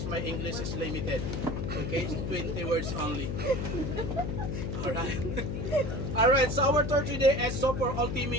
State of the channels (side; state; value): left; noise; hum, 2 dB below the sound